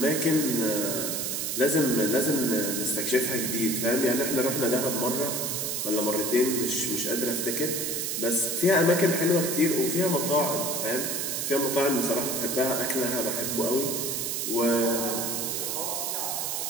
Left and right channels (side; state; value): right; noise; hiss, 1 dB below the sound